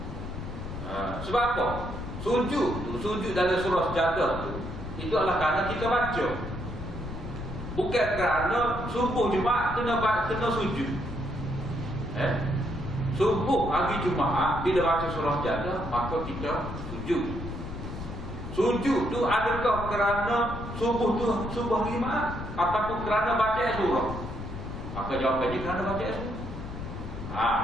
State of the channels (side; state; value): left; noise; rumble, 8 dB below the sound